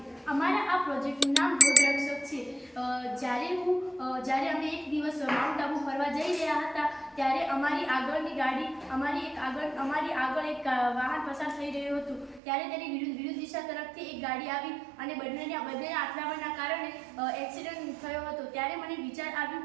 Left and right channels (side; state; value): left; drops out; at 12.4 s